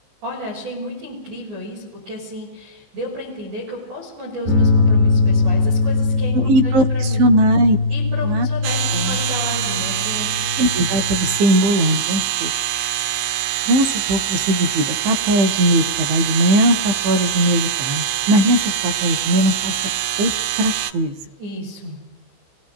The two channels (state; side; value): late; left; 15 ms